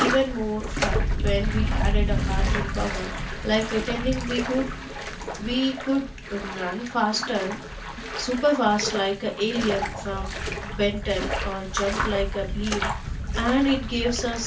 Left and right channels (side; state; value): both; identical; correlation 1.00